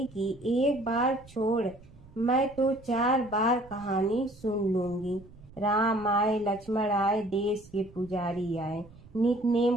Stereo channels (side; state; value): right; noise; rumble, 22 dB below the sound